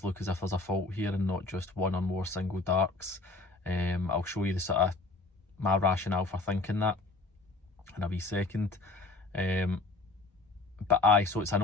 look as if there's a fault here and not just one or more single darks. I'll show you the sort of my rationale for thinking that in a wee second. So it's an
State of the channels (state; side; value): quieter; right; 3.5 dB